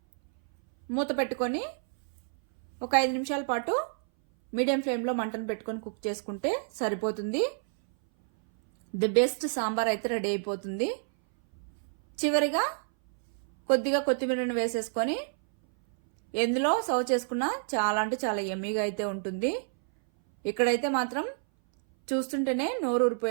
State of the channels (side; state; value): left; silent; 59 dB below the other